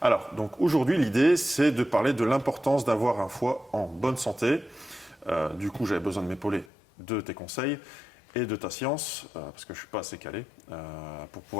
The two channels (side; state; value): right; drops out; at 6.7 s